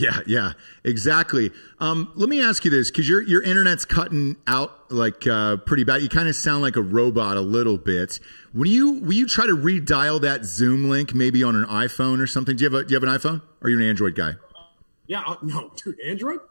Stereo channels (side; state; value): both; inverted; correlation -1.00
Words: exactly. Let me ask you this, because your internet's cutting out like pretty bad. You kind of sound like a robot a little bit. Will you try to redial that Zoom link maybe on an iPhone or something? Do you have an iPhone? Or are you an Android guy? Yeah, no, dude, Android?